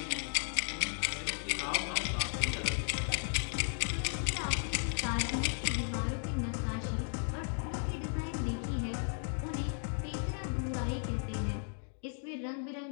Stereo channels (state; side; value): silent; right; 54 dB below the other